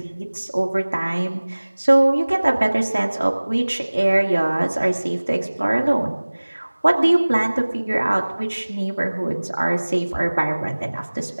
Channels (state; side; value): inverted; both; correlation -1.00